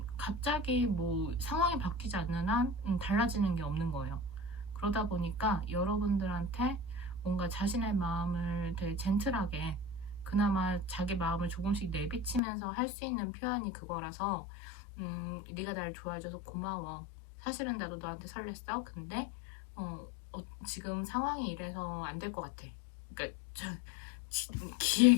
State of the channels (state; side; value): drops out; right; at 12.4 s